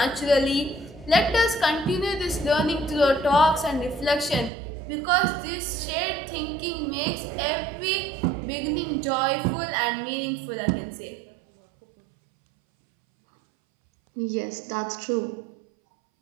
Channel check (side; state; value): left; drops out; at 4.5 s